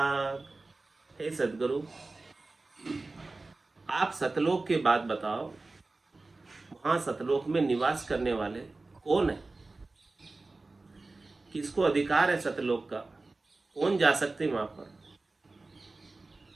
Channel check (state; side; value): quieter; left; 3.4 dB